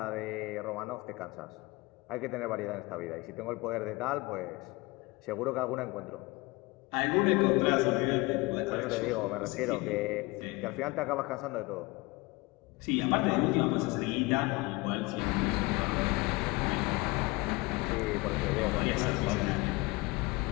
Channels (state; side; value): quieter; right; 23.6 dB